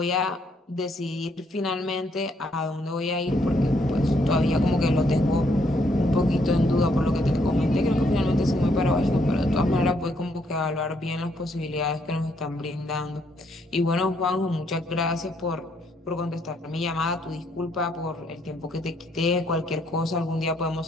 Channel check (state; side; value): normal; both; correlation 0.71